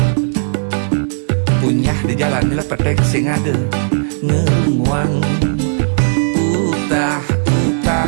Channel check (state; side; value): silent; left; digital silence